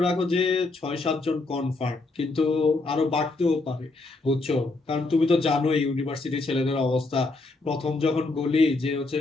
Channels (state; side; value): quieter; right; 3.3 dB